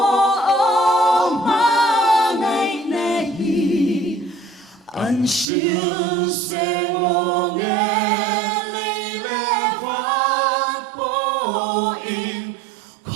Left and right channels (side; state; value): left; drops out; at 5.5 s